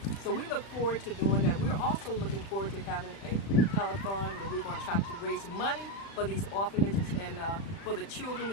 So we look forward to doing that. We're also looking forward to having a telethon where we're going to try to raise money for these orphanages and for the children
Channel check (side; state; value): right; late; 36 ms